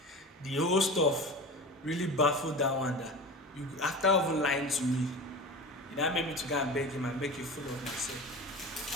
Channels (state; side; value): normal; both; correlation 0.32